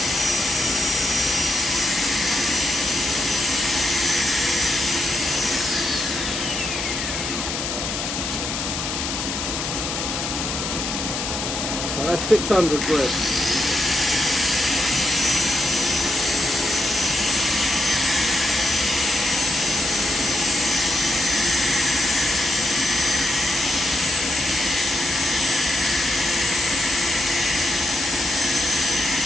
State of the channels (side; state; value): left; noise; hiss, 3 dB below the sound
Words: that's 600 grit.